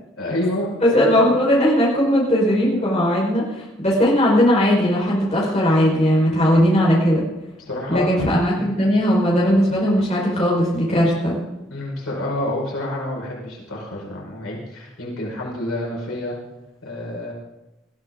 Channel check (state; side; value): normal; both; correlation 0.66